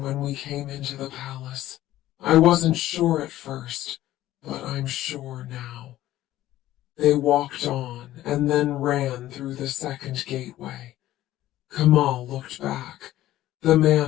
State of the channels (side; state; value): right; quieter; 14.4 dB